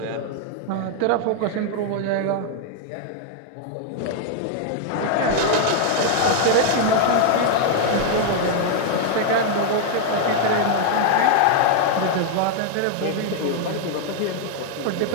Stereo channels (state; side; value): different; both; correlation 0.00